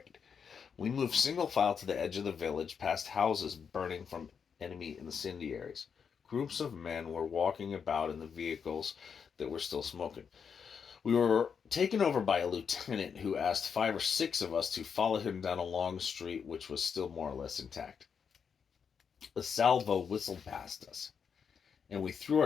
We moved single file to the edge of the village, past houses burning from enemy incendiaries. Groups of men were walking about in the vehicles that were still smoking. We were taken over by a lieutenant who asked 5 or 6 of us to follow him down a long street which was still more or less intact. A salvo whistled past us, and we threw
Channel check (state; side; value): quieter; right; 6.6 dB